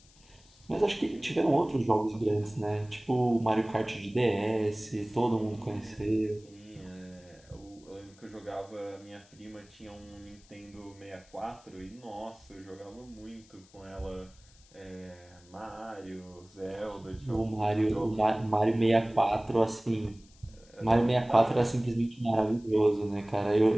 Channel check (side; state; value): left; noise; hiss, 27 dB below the sound